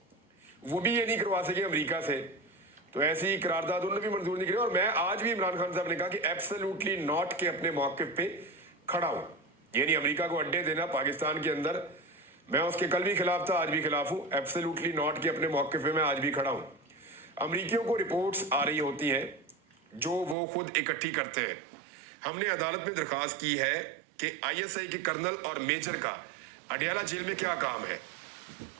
वो भी ये नहीं करवा सके अमेरिका से। तो ऐसी करारदाद उन्होंने भी मंजूर नहीं करी। और मैं आज भी इमरान खान साहब ने कहा कि एब्सोल्युटली नॉट के अपने मौक़िफ़ पे खड़ा हूँ। यानी अमेरिका को अड्डे देना पाकिस्तान के अंदर, मैं उसके कल भी खिलाफ था, आज भी खिलाफ हूँ। एब्सोल्युटली नॉट के अपने मौक़िफ़ पे मैं आज भी खड़ा हूँ। अमरीकियों को रिपोर्ट्स आ रही होती हैं जो वो खुद इकट्ठी करते हैं। हमने अदालत में दरख्वास्त की है कि ISI के कर्नल और मेजर का अडयाला जेल में क्या काम है।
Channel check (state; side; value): drops out; left; at 20.4 s